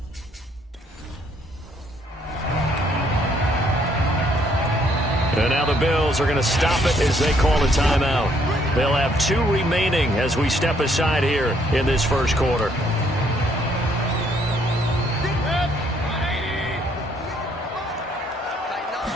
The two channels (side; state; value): both; normal; correlation 0.68